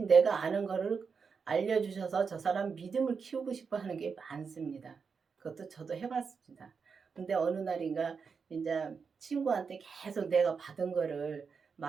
내가 아는 거를 알려주셔서 저 사람 믿음을 키우고 싶어 하는 게 많습니다. 그것도 저도 해봤습니다. 근데 어느 날인가 이제 친구한테 계속 내가 받은 거를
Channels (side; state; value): left; quieter; 5.6 dB